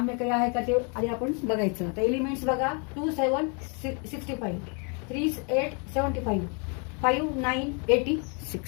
काही आहे का ते आधी आपण बघायचं. आता एलिमेंट्स बघा, 2 7 65, 3 8 75, 5 9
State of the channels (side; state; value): right; quieter; 36.8 dB